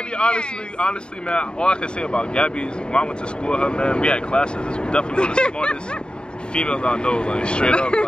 honestly, man, all I can say about Gabby is when I went to school with her, man, we had classes. This was definitely one of the smartest females I know, like straight up.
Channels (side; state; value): right; late; 0.050 ms